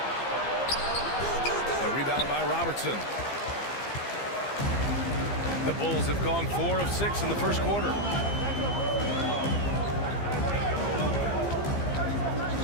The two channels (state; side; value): late; right; 15 ms